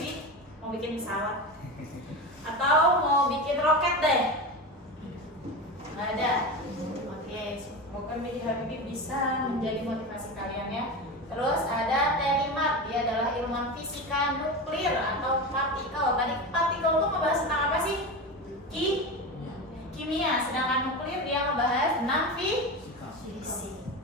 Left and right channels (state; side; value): normal; both; correlation 0.23